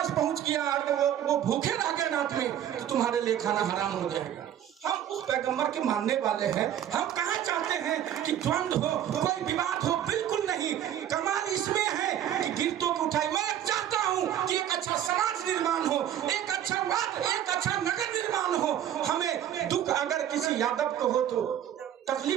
पहुंच गया और वो भूखे रह गए रात में तो तुम्हारे लिए खाना हराम हो जाएगा। हम उस पैगंबर के मानने वाले हैं। हम कहाँ चाहते हैं कि द्वंद्व हो, कोई विवाद हो, बिल्कुल नहीं। कमाल इसमें है कि गिरतों को उठाई। मैं चाहता हूँ कि एक अच्छा समाज निर्माण हो, एक अच्छा वाद, एक अच्छा नगर निर्माण हो। हमें दुख अगर किसी यादव को हो तो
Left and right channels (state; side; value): quieter; left; 10.8 dB